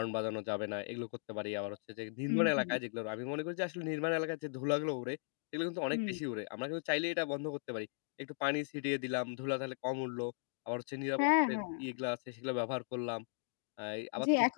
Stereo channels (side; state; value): right; silent; digital silence